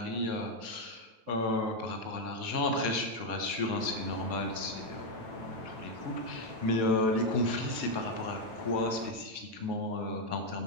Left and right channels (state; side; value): late; left; 9.0 ms